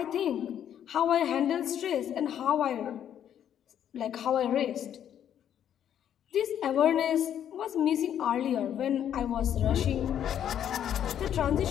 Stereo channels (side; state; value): right; quieter; 9.9 dB